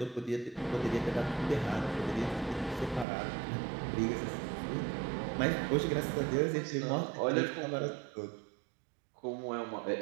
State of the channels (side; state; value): left; drops out; at 3.1 s